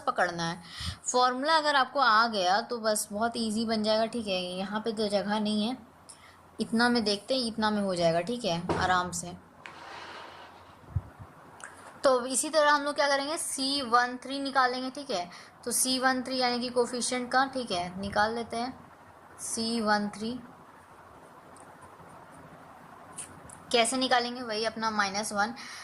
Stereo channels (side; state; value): both; identical; correlation 1.00